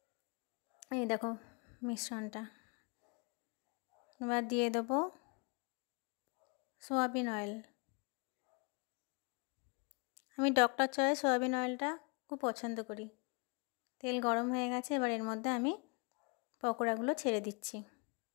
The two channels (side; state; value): right; quieter; 33.3 dB